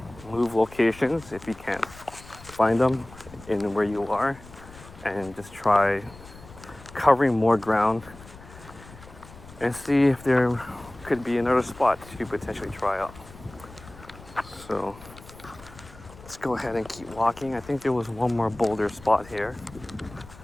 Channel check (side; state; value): left; noise; rumble, 19 dB below the sound